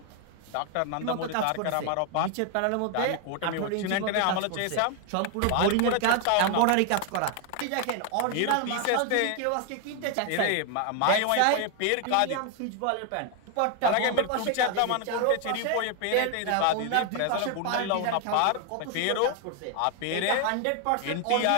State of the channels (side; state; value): both; different; correlation 0.01